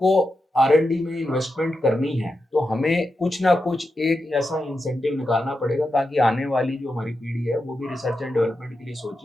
आर&डी में इन्वेस्टमेंट करनी है तो हमें कुछ ना कुछ एक ऐसा इंसेंटिव निकालना पड़ेगा ताकि आने वाली जो हमारी पीढ़ी है वो भी रिसर्च एंड डेवलपमेंट के लिए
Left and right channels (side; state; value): both; normal; correlation 0.88